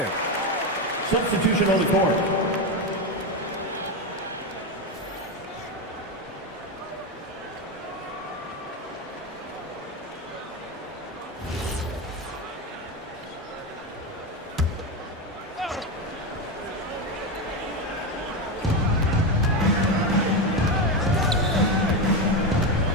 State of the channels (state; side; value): normal; both; correlation 0.13